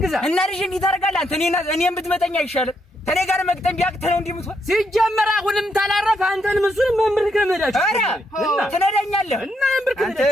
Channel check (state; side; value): normal; both; correlation 0.77